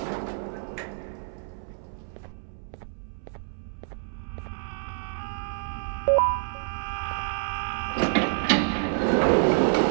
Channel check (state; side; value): silent; left; 59 dB below the other